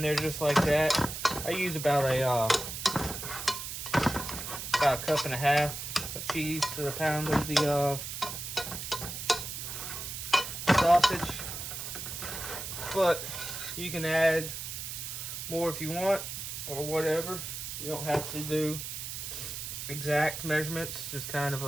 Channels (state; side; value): noise; right; hiss, 6 dB below the sound